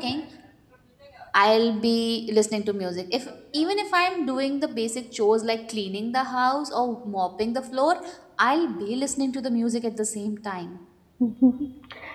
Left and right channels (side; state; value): both; identical; correlation 1.00